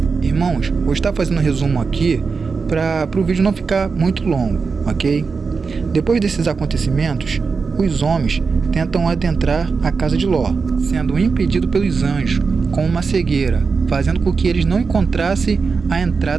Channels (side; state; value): left; quieter; 4.9 dB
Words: Irmãos, vou estar fazendo um resumo aqui para o vídeo não ficar muito longo, ok? Depois desses acontecimentos, os homens tentam adentrar a casa de Ló, sendo impedidos pelos anjos com uma cegueira, fazendo com que eles não encontrassem a